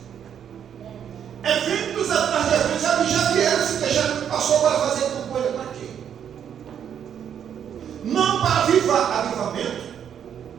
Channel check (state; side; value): quieter; left; 8.7 dB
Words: Eventos atrás de eventos. Já vieram se queixar que passou para fazer campanha para quê? Não para avivamento.